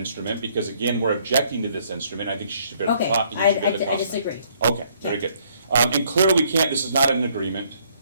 because again, we're objecting to this instrument, I think she should bear the Okay, cost. I disagree. Okay, very good. And clearly we can't, this is not an agreement,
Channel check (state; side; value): inverted; both; correlation -0.66